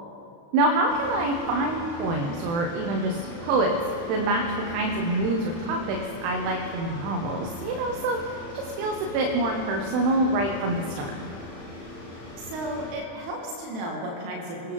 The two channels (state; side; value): late; left; 35 ms